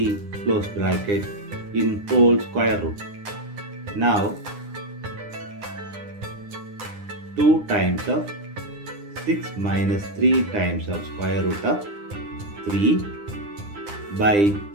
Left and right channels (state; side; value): late; left; 9.8 ms